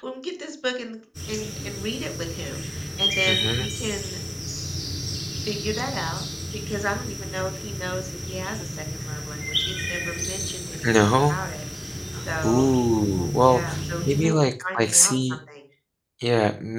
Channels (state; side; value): identical; both; correlation 1.00